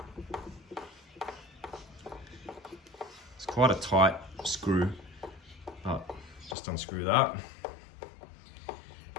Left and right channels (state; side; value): drops out; right; at 6.6 s